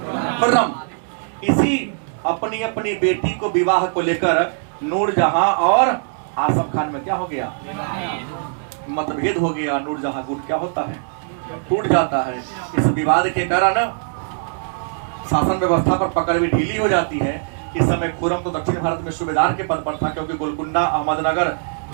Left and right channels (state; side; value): silent; left; digital silence